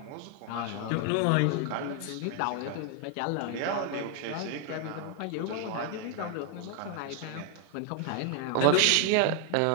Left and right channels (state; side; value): different; both; correlation 0.00